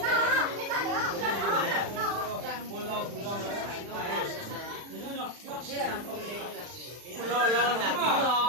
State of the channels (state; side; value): late; left; 40 ms